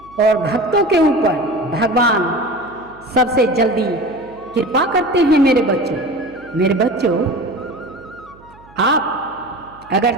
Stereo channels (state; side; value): noise; right; hum, 26 dB below the sound